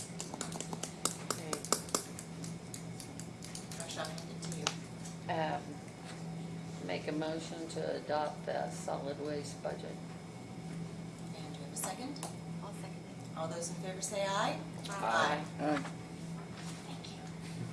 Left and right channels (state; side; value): identical; both; correlation 1.00